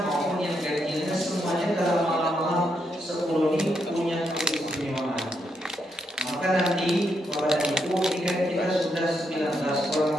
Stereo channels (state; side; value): normal; both; correlation 0.80